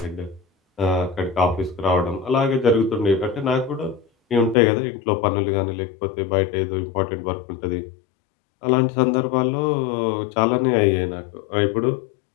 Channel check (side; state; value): right; drops out; at 4.5 s